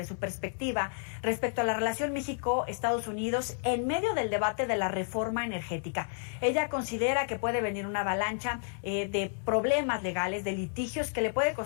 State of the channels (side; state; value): right; silent; 57 dB below the other